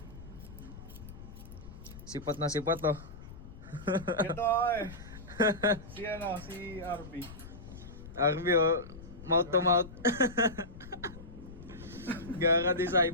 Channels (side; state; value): left; noise; rumble, 15 dB below the sound